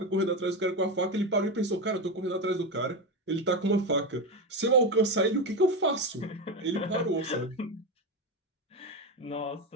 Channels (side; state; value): both; normal; correlation 0.15